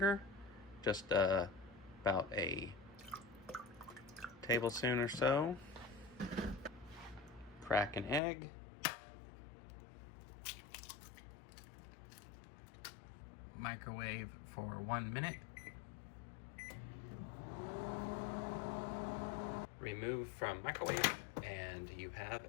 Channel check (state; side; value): drops out; right; at 8.2 s